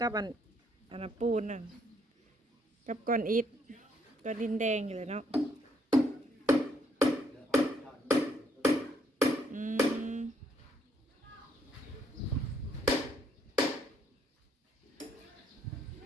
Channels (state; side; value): normal; both; correlation 0.70